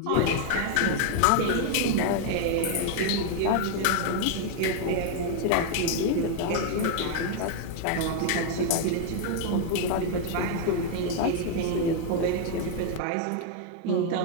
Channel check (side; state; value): both; different; correlation 0.00